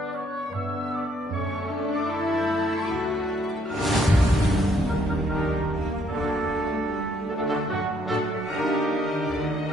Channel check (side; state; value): both; normal; correlation 0.68